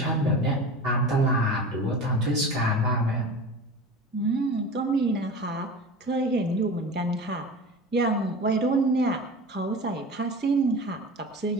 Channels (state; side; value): normal; both; correlation 0.32